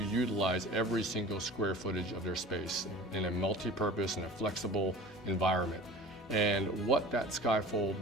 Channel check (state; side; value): normal; both; correlation 0.40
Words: utilize every single square footage of their space in a multi-purpose and a flexible environment. And what that Skyfold